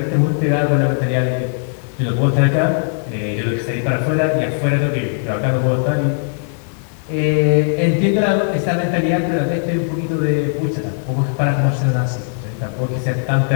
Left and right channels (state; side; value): silent; right; 63 dB below the other